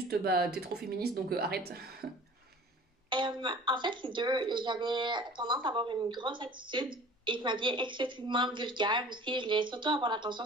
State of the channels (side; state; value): both; normal; correlation 0.45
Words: t'es trop féministe, donc arrête. En fait, les deux, j'avais tendance à avoir une grosse attitude et je m'habillais excessivement vulgaire aussi. Je voulais surtout avoir l'attention